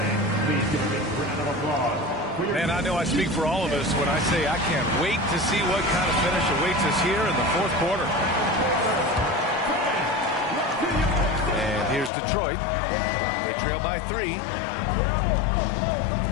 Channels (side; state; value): right; drops out; at 12.1 s